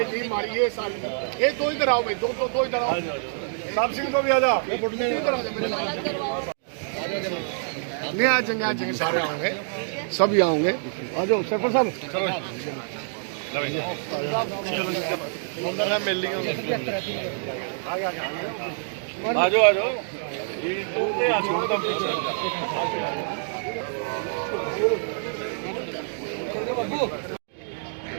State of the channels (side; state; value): left; silent; digital silence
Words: टीम हमारी ये साल ये दो इधर आओ भाई, दो इधर आओ। साहब सिंह को भी आ जा, इधर आ जा मेरे साथ। नहीं आ जाएंगे सारे आएंगे, सभी आएंगे। आ जाओ सरपंच साहब, मिल ली आ जाओ।